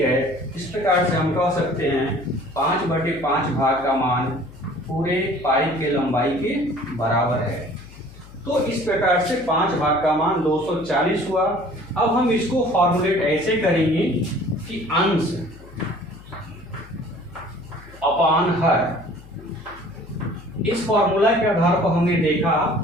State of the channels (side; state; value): left; noise; hum, 20 dB below the sound